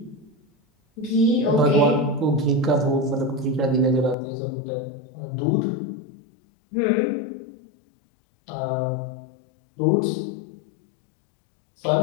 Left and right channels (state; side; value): drops out; right; at 4.2 s